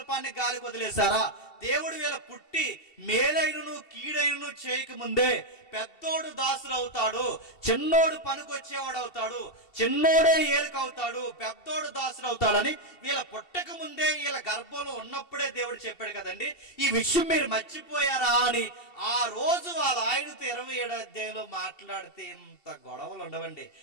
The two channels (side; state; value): right; late; 2.7 ms